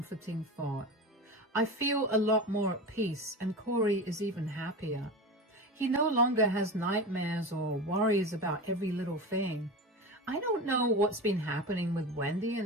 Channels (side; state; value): both; normal; correlation 0.26